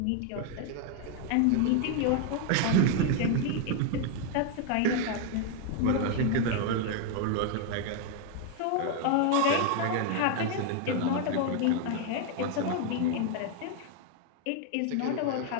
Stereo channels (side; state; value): both; different; correlation 0.01